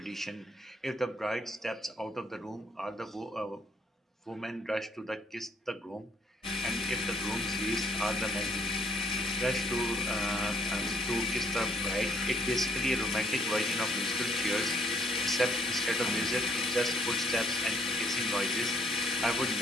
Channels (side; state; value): both; normal; correlation 0.66